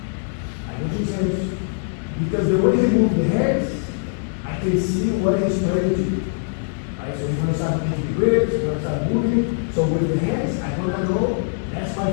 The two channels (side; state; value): right; silent; digital silence